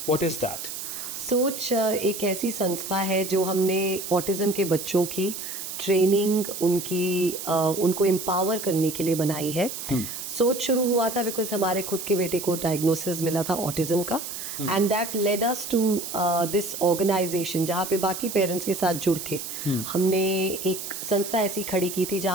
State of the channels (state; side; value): noise; right; hiss, 7 dB below the sound